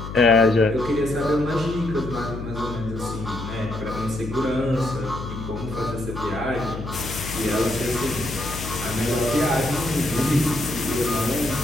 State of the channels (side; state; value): left; noise; hum, 8 dB below the sound